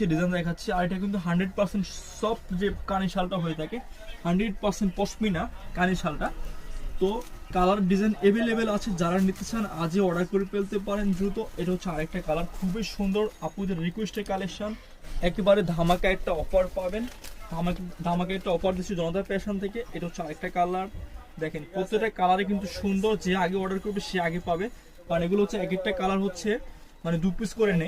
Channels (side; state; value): both; identical; correlation 1.00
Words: ডিজাইন দেখাচ্ছি। আর এটা কিন্তু 100% সফট যে কানি শালটা হয়ে থাকে, 100% পশমিনা কানি শালটা। তো কালার ডিজাইন অ্যাভেলেবেল আছে, যারা নিতে চান আজই অর্ডার করে ফেলতে পারেন দ্রুত। এটা হচ্ছে আরেকটা কালার, খুবই সুন্দর, আপুদের রিকোয়েস্টের কালেকশন। একেবারে ধামাকা একটা অফার পাবেন, ধামাকা একটা অফার দিচ্ছি জনতা ফ্যাশন থেকে। এটা হচ্ছে আরেকটা কালার, দেখেন প্রত্যেকটা কালারে কিন্তু সুন্দর, যে আগে অর্ডার করবে সে আগে পাবে। কারণ এগুলো হচ্ছে এক একটা কালার হচ্ছে মানে 2 পিস করে